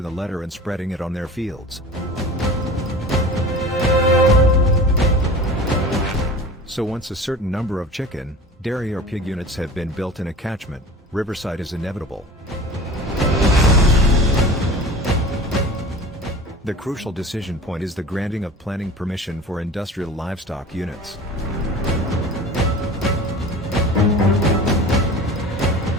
the letter and spreading it on their fields. So once a certain number of chicken, dairy or pig units have been built in a catchment, Rivercide is inevitable. The crucial decision point is the granting of planning permission for industrial livestock units.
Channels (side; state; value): both; normal; correlation 0.38